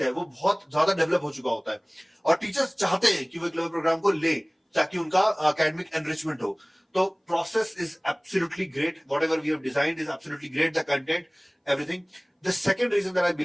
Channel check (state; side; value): identical; both; correlation 1.00